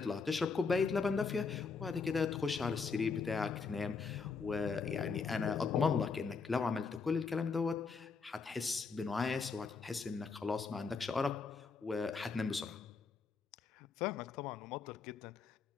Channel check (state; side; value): quieter; right; 4.9 dB